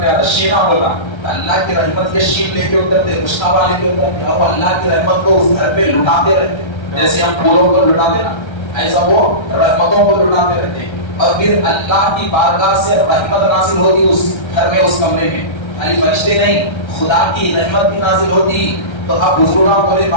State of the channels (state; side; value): late; right; 1.3 ms